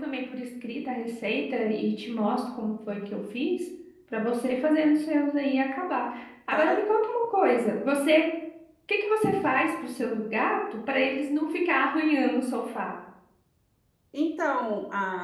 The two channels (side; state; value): both; identical; correlation 1.00